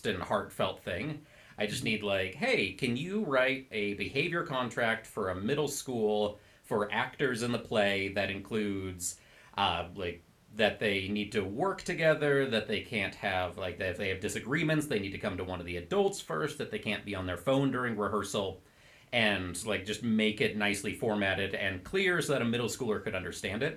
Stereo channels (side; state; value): both; identical; correlation 1.00